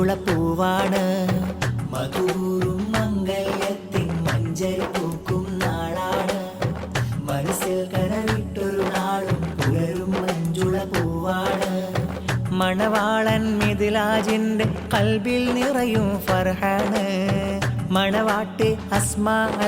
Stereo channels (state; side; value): identical; both; correlation 1.00